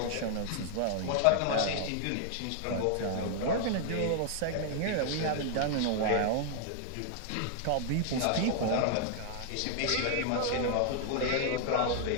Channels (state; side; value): different; both; correlation 0.00